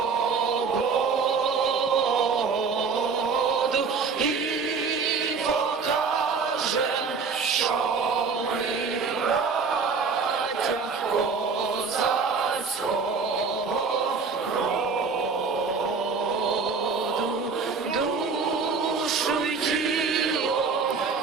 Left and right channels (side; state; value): left; quieter; 5.1 dB